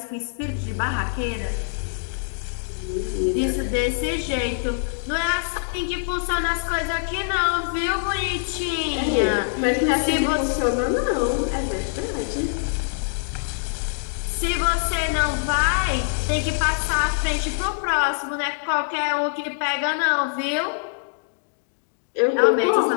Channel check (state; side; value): silent; right; digital silence